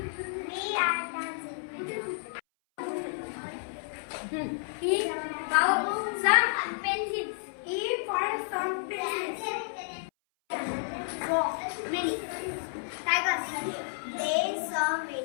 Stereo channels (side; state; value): right; silent; 57 dB below the other